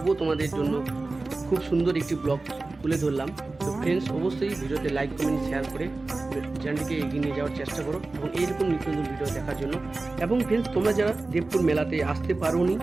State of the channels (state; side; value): quieter; left; 3.4 dB